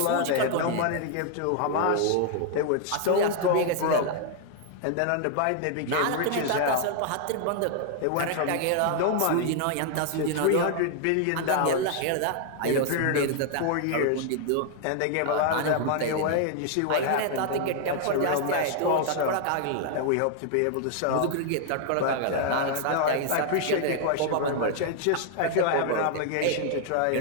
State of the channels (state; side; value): different; both; correlation 0.00